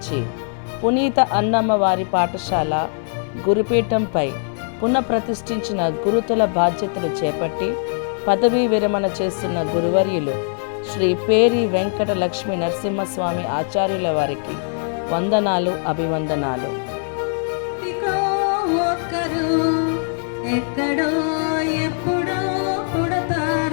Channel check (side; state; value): right; silent; digital silence